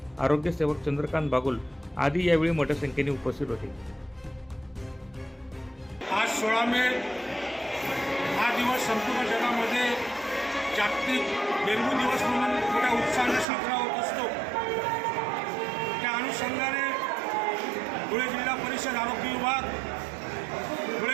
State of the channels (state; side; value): drops out; left; at 13.5 s